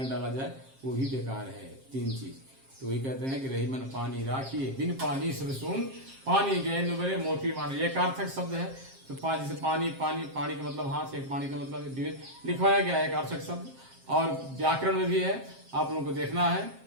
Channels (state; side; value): late; left; 7.5 ms